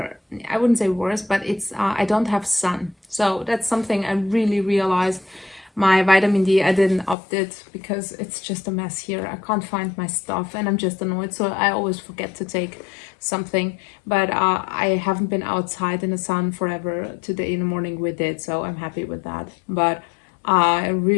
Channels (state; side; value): drops out; right; at 7.2 s